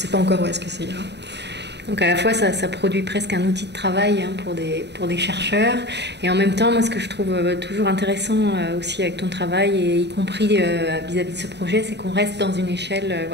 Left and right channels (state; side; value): late; left; 0.50 ms